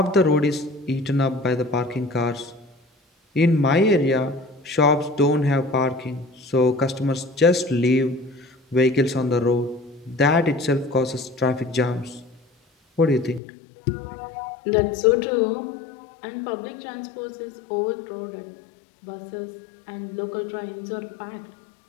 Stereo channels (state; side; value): drops out; right; at 13.4 s